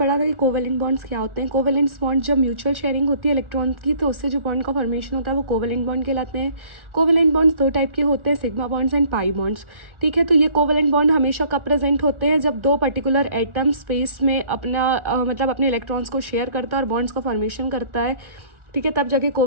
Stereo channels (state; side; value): late; left; 1.4 ms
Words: था कि कोवेलेंट बॉन्ड्स क्या होते हैं। कोवेलेंट बॉन्ड जब म्यूचुअल शेयरिंग होती है इलेक्ट्रॉन की, तो उससे जो बॉन्ड का फॉर्मेशन होता है वो कोवेलेंट बॉन्ड कहलाते हैं। कोवेलेंट बॉन्ड्स 2 टाइप के होते हैं, sigma bonds and pi bonds. ठीक है, तो ये कोवेलेंट बॉन्ड हमेशा कब प्रेजेंट होते हैं, जब 2 पर्टिकुलर एटम स्पेस में मतलब अपने इलेक्ट्रॉन्स को शेयर करता है और बॉन्ड्स का फॉर्मेशन करता है। ठीक है, तब जाके